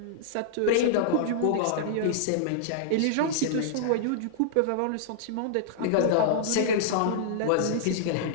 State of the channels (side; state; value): both; different; correlation -0.02